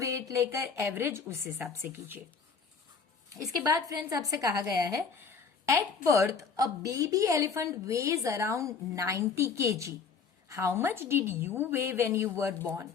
लेकर एवरेज उस हिसाब से कीजिए। इसके बाद फ्रेंड्स आपसे कहा गया है, at birth a baby elephant weighs around 90 kg। How much did you weigh when you were born?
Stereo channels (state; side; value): quieter; right; 5.6 dB